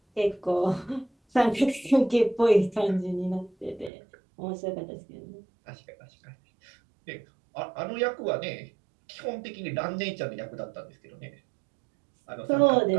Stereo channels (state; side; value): drops out; left; at 3.9 s